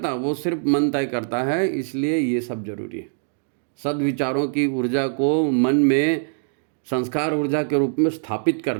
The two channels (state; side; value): silent; left; digital silence